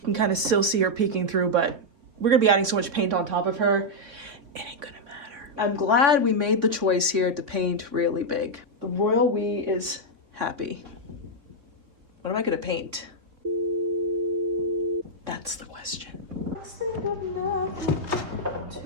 can kind of still see her peeking through, but we're gonna be adding so much paint on top of her, it ain't gonna matter. I'm glad we made the choice here to paint really big. The royal we is happy. What am I gonna paint? That's the question. Let's think of nothing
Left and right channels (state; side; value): late; left; 3.6 ms